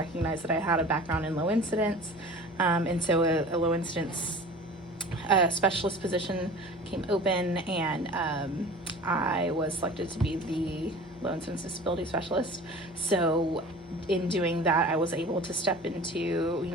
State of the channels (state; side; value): normal; both; correlation 0.41